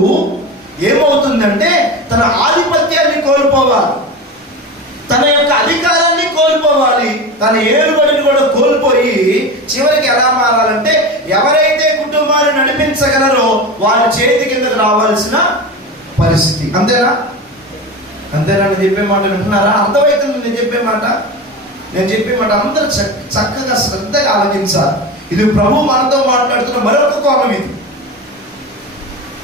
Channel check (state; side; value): normal; both; correlation 0.26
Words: ఏమవుతుందంటే తన ఆధిపత్యాన్ని కోల్పోవాలి, తన యొక్క అధికారాన్ని కోల్పోవాలి, తన ఏలుబడిని కూడా కోల్పోయి చివరికి ఎలా మారాలంటే ఎవరైతే కుటుంబాన్ని నడిపించగలరో వారి చేతి కిందకు రావాల్సిన పరిస్థితి. అంతేనా? అంతేనా? నేను చెప్పే మాట వింటున్నారా? అర్థమవుతుంది నేను చెప్పే మాట? నేను చెప్పే మాట అందరూ చక్కగా శ్రద్ధగా ఆలోచించాలి. ఇది ప్రభు మనతో మాట్లాడుతున్న మరొక కోణం. ఇది